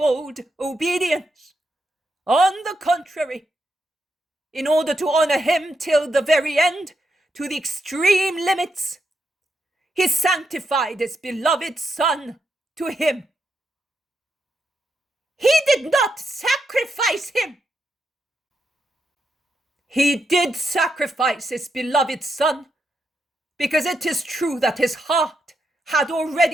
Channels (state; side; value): normal; both; correlation 0.83